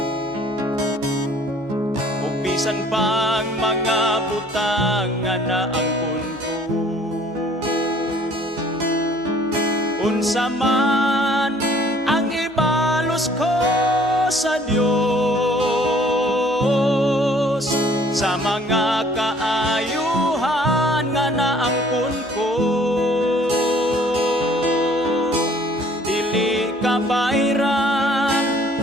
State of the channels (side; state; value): both; normal; correlation 0.56